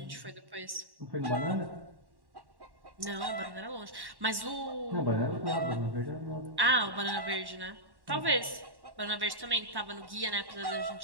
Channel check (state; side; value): late; left; 1.1 ms